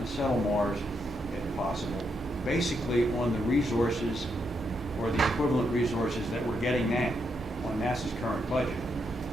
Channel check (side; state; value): both; normal; correlation 0.80